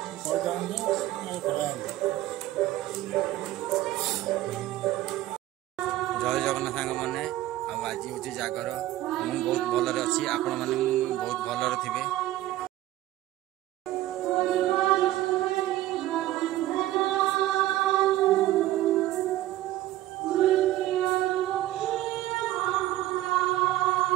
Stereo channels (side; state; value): left; quieter; 15.0 dB